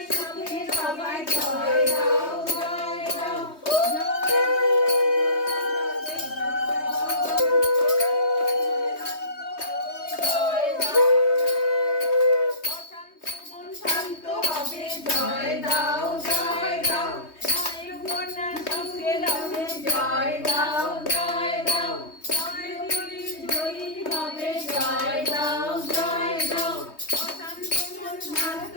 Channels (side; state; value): right; late; 3.2 ms